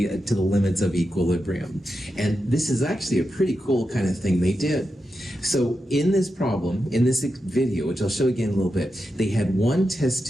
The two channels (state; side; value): normal; both; correlation 0.88